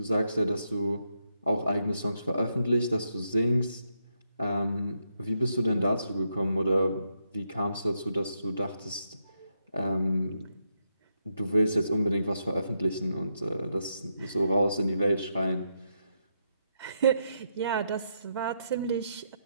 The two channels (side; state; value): both; inverted; correlation -0.80